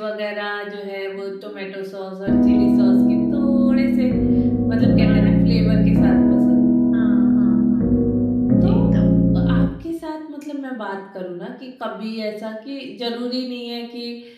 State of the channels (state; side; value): identical; both; correlation 1.00